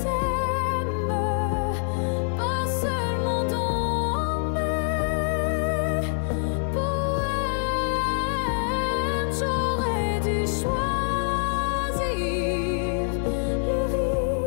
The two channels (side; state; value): right; silent; digital silence